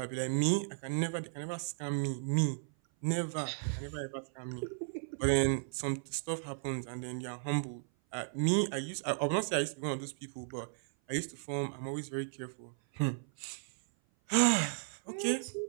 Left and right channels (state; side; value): silent; left; 54 dB below the other